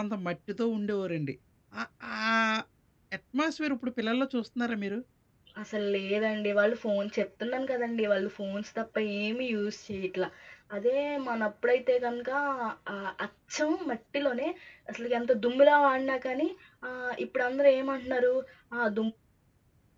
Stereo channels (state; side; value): identical; both; correlation 1.00